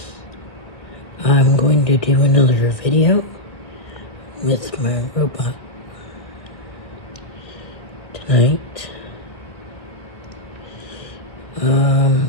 I'm going to do another video with my robot tonight.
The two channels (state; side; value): late; right; 1.7 ms